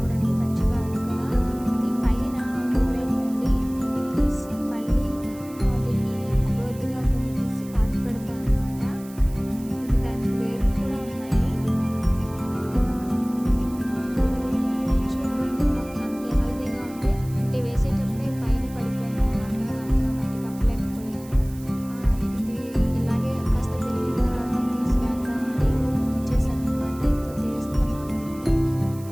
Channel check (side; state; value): right; noise; hiss, 21 dB below the sound